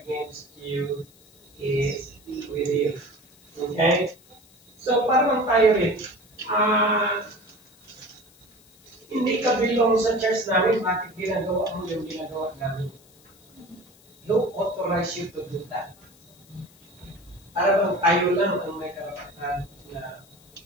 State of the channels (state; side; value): noise; left; hiss, 28 dB below the sound